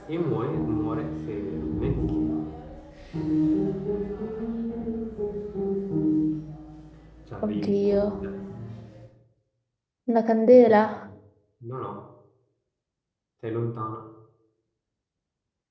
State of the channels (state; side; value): identical; both; correlation 1.00